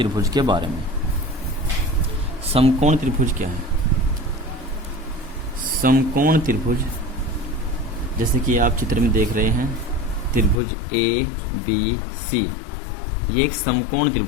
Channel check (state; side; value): drops out; right; at 10.6 s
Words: के बारे में। समकोण त्रिभुज क्या है? समकोण त्रिभुज जैसे कि आप चित्र में देख रहे हैं, त्रिभुज ए बी सी, ये एक समकोण